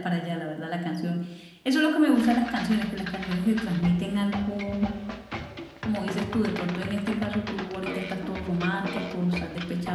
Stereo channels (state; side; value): identical; both; correlation 1.00